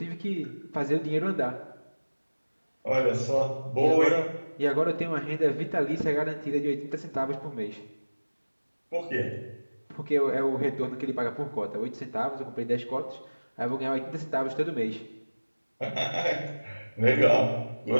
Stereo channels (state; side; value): inverted; both; correlation -1.00